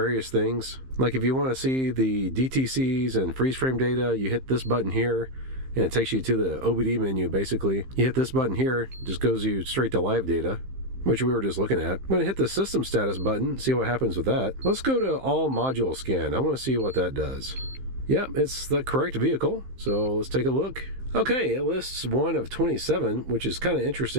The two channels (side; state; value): left; late; 15 ms